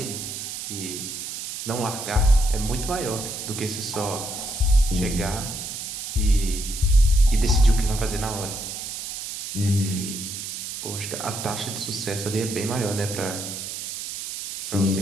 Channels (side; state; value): right; noise; hiss, 7 dB below the sound